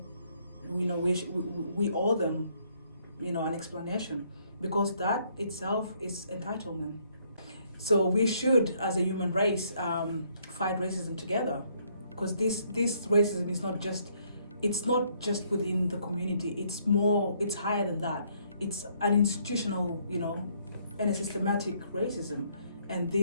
owe them, an explanation, because that itself is entitlement. So we should, as a human race, fight racism together, because this racism is not just within the community. It's higher than that. It's an institutional, and a systematic racism. And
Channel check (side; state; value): both; inverted; correlation -0.68